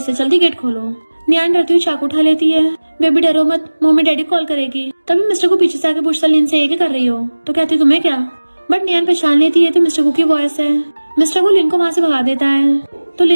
जल्दी गेट खोलो। न्यान डरती हुई चाकू उठा लेती है। बेबी डरो मत, मम्मी डैडी कॉल करेगी। तभी मिस्टर को पीछे से आके पूछता लिन से ये क्या कर रही हो। तो कहती तुम्हें क्या। बट न्यान पहचान लेती है तो मिस्टर गु की वॉइस है। मिस्टर गु लिन को वहाँ से भगा देता है। तो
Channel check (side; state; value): both; inverted; correlation -1.00